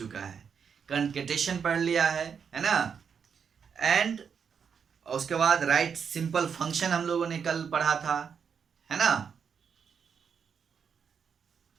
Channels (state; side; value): quieter; left; 6.8 dB